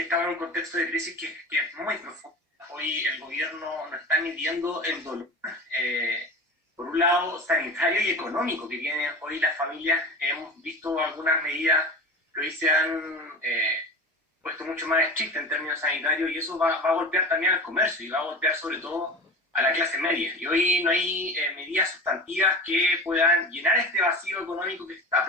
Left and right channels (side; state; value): both; normal; correlation 0.32